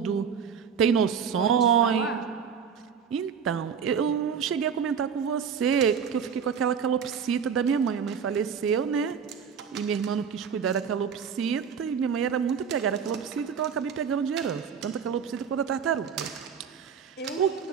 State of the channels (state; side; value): quieter; left; 7.0 dB